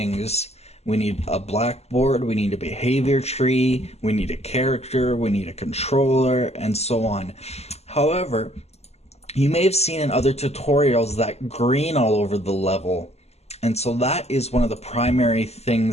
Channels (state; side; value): late; right; 0.30 ms